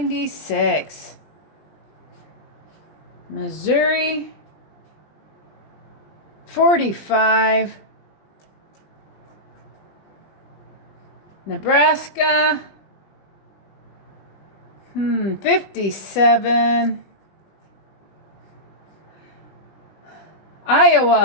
Missouri, 45. Nebraska, 57.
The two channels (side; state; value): right; late; 20 ms